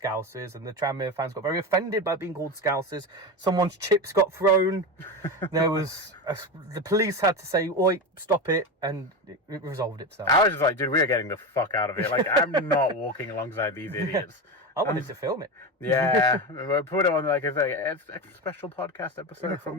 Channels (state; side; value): normal; both; correlation 0.20